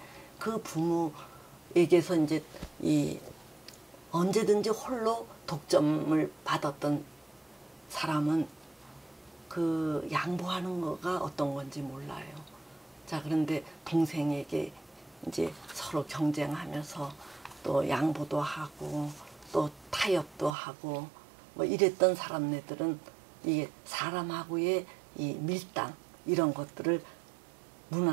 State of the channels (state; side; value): drops out; left; at 20.5 s